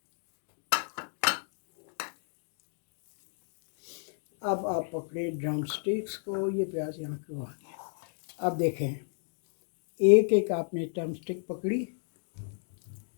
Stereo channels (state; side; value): silent; right; digital silence